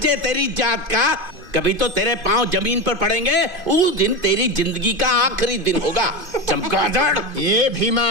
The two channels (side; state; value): left; late; 2.5 ms